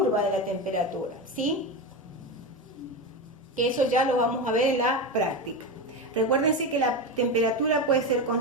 de la temperatura, ¿sí?, que eso ya lo vamos a ver en la práctica. Recuérdense que la temperatura puede ser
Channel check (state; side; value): normal; both; correlation 0.18